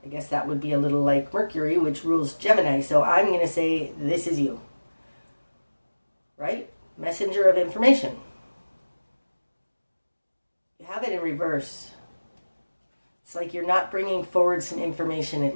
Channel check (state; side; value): inverted; both; correlation -1.00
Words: I guess that would be a little like Mercury, which rules Gemini. So I'm going to say this is you. Right? Messenger of information. You have it in reverse. It's like you're not bringing forward some information,